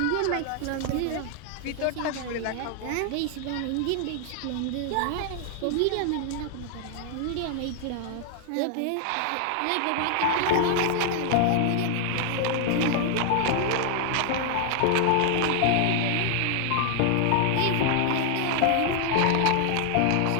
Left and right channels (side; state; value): both; different; correlation 0.00